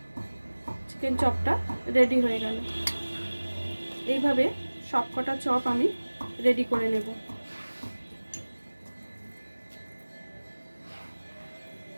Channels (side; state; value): both; inverted; correlation -1.00